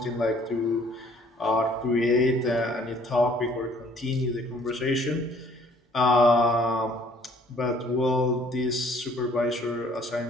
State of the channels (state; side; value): normal; both; correlation 0.59